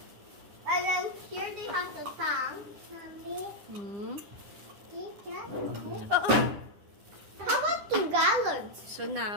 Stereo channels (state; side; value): late; left; 9.8 ms